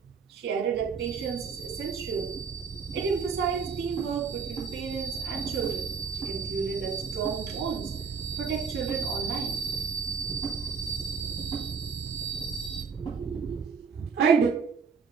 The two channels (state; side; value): quieter; left; 5.7 dB